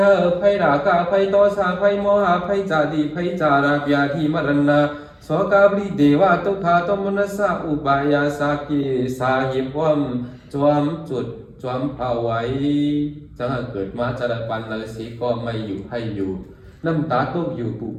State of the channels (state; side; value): identical; both; correlation 1.00